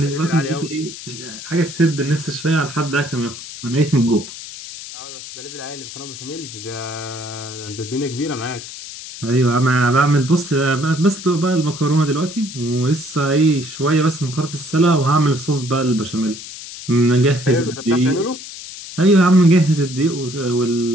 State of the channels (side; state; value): left; noise; hiss, 12 dB below the sound